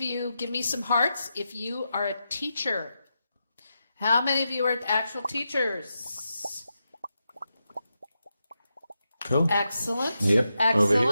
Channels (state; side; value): inverted; both; correlation -0.87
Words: you give me some hearts if you are a teacher? How many of you are actual teachers? Cool. Excellent. Yep.